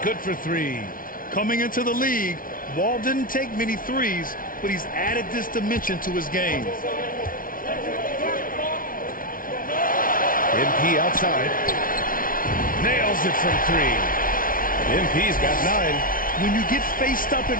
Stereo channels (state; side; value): late; right; 0.40 ms